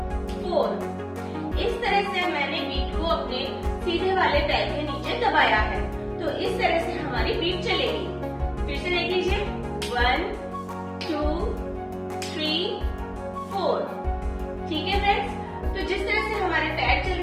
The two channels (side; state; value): both; identical; correlation 1.00